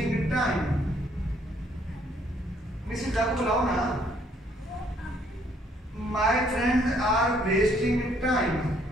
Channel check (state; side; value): normal; both; correlation 0.66